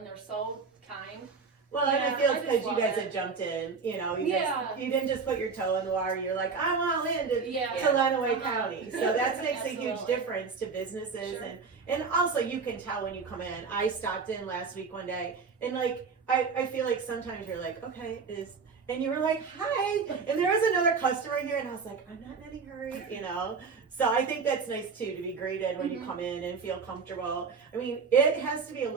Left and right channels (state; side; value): quieter; left; 5.1 dB